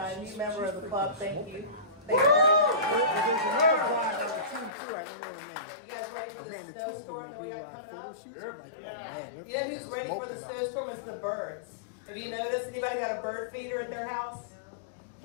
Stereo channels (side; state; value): right; drops out; at 4.7 s